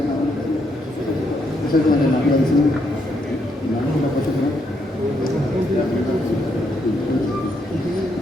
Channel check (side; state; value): both; normal; correlation 0.77